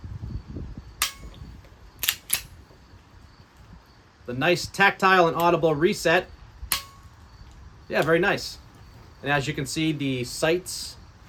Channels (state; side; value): identical; both; correlation 1.00